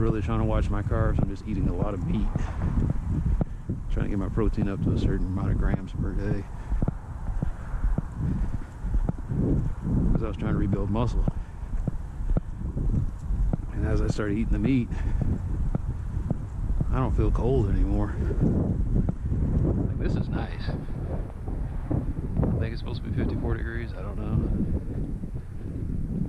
trying to watch my carbs. I'm just eating a lot of meat. Trying to get my protein up to a certain amount of grams per day. Because I was trying to rebuild muscle. And as I started eating the meat, I don't feel cold anymore. Like, this is nice. I think it's supposed to be 54 degrees. I don't know.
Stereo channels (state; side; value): identical; both; correlation 1.00